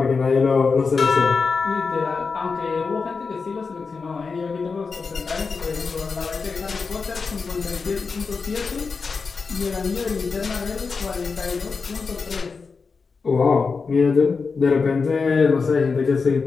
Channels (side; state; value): right; quieter; 4.8 dB